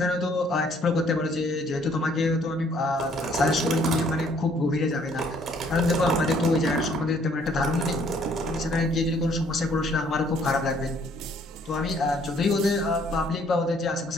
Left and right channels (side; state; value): both; normal; correlation 0.63